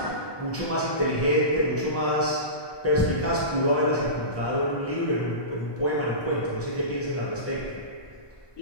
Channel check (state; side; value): late; right; 1.2 ms